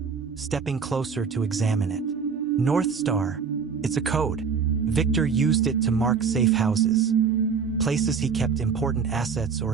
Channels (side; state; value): left; quieter; 6.0 dB